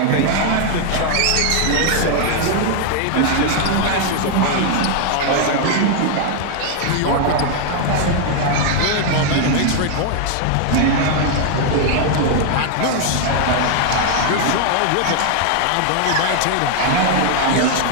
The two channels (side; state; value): both; different; correlation 0.00